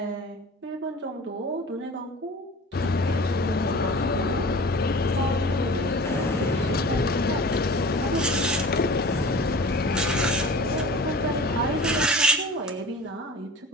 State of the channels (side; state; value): both; normal; correlation 0.40